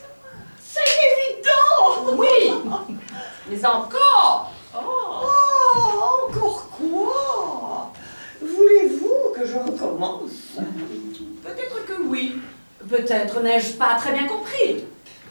C'est évident! Oui, mais encore. Oh, encore quoi? Voulez-vous que je recommence? Peut-être que oui, peut-être n'ai-je pas très bien compris.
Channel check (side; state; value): both; inverted; correlation -1.00